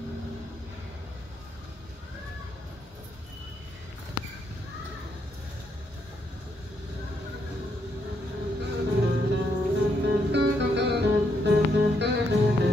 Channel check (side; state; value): both; normal; correlation 0.76